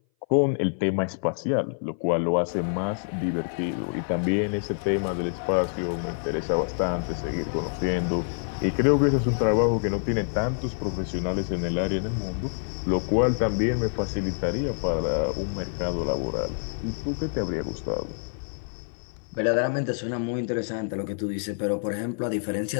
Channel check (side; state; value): right; silent; 58 dB below the other